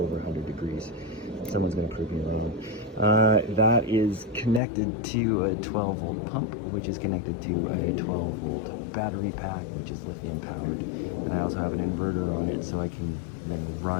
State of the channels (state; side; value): drops out; right; at 4.6 s